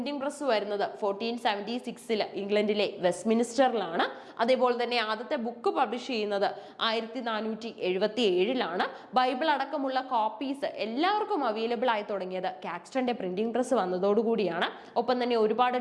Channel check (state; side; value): identical; both; correlation 1.00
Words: പ്രസ് വരുന്നത് 1476 ഇംഗ്ലണ്ടിലെ വെസ്റ്റ്മിനിസ്റ്ററിലാണ്. അതേപോലെ തന്നെ ആദ്യത്തെ ബുക്ക് പബ്ലിഷ് ചെയ്യുന്നത് 1477 ബൈബിൾ അടക്കമുള്ള കോപ്പീസ് എല്ലാവർക്കും അവൈലബിൾ ആയി തുടങ്ങിയത് കാക്സ്റ്റന്റെ പ്രിന്റിംഗ് പ്രസ് വന്നതോടുകൂടിയാണ്. ഒപ്പം തന്നെ ഒരുപാട്